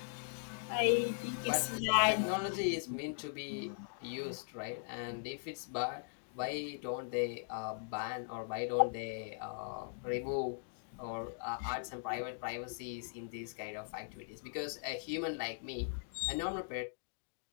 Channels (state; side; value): silent; right; digital silence